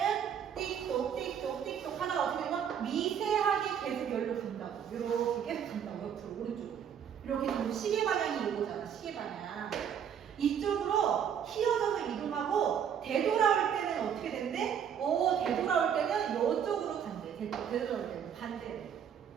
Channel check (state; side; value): quieter; left; 8.4 dB